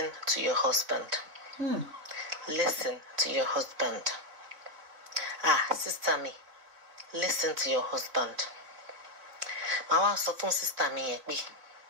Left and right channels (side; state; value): left; late; 3.7 ms